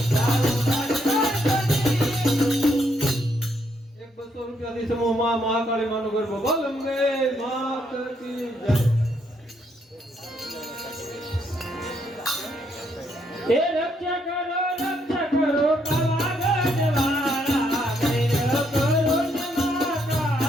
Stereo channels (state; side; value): normal; both; correlation 0.74